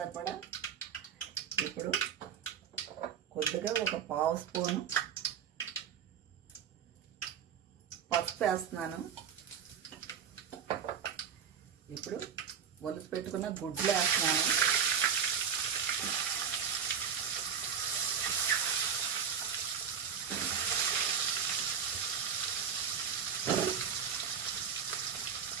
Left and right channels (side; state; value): left; quieter; 7.3 dB